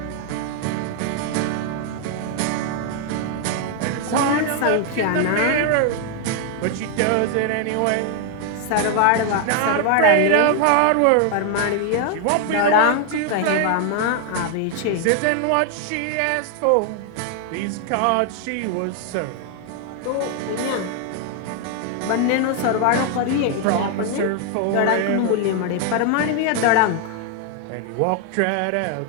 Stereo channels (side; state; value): both; different; correlation 0.00